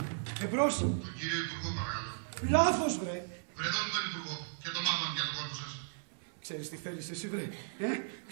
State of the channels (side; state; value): left; silent; digital silence